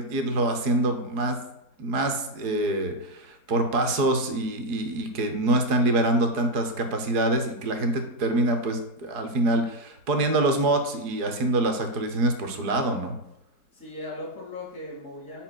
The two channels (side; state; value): left; late; 4.7 ms